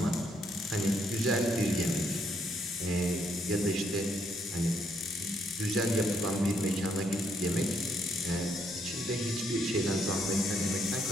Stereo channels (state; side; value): normal; both; correlation 0.73